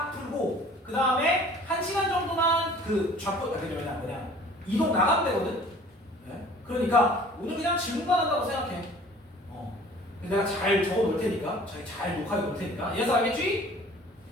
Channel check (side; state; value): both; normal; correlation 0.49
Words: 풀고 그 다음에 1시간 정도만 그 좌표 뭐냐 이동 나가면 되거든. 네. 그러니까 오늘 그냥 질문만 한다고 생각해. 내가 잘 적어 놓을 테니까 잘 녹화해 놓을 테니까 이해서 알겠지?